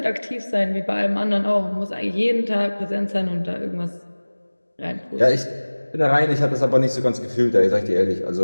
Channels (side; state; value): both; inverted; correlation -1.00